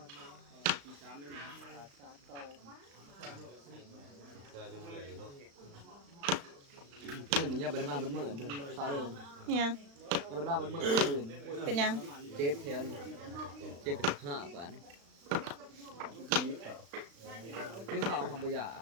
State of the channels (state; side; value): late; left; 35 ms